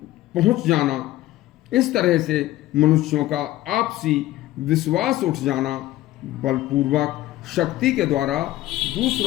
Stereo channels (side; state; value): right; quieter; 15.6 dB